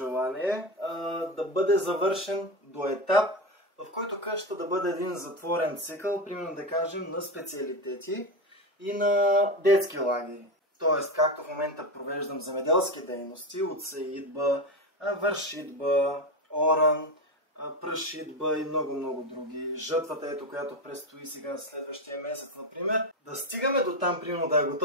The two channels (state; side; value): normal; both; correlation 0.17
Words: е да бъде завършен до етап, в който къщата да бъде един затворен цикъл, примерно да кажем на специалитети и на детски лагери. Тоест, както в момента провеждам земеделски дейности от сеидба, вършитба, оран, прашитба и много други. Жътвата, ето, която предстои сега следващия месец, например. Да стигаме до там, примерно да е